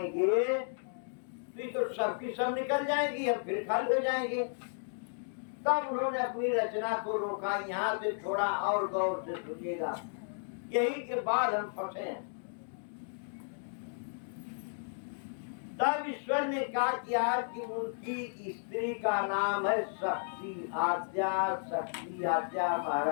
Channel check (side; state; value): right; silent; digital silence